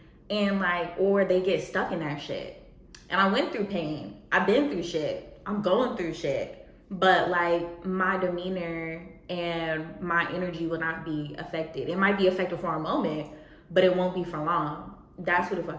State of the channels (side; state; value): both; identical; correlation 1.00